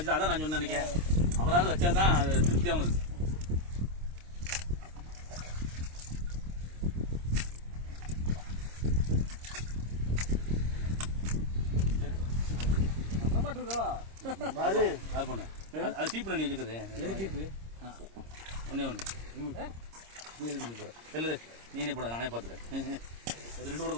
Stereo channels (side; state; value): left; late; 26 ms